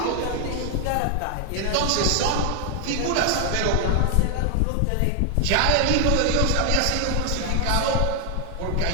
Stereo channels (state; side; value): different; both; correlation 0.00